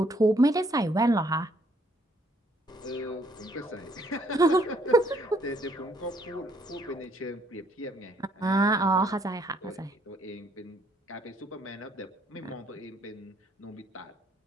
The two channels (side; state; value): both; normal; correlation 0.66